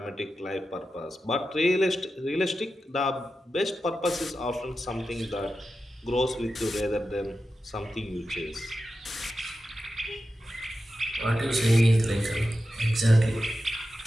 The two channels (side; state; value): both; normal; correlation 0.91